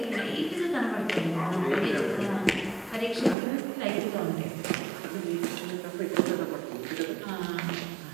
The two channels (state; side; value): drops out; left; at 3.4 s